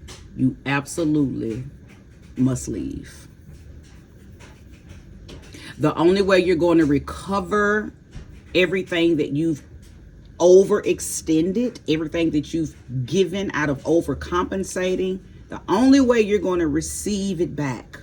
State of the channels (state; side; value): identical; both; correlation 1.00